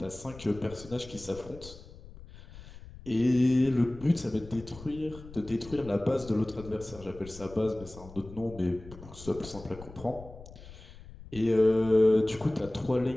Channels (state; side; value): noise; left; rumble, 17 dB below the sound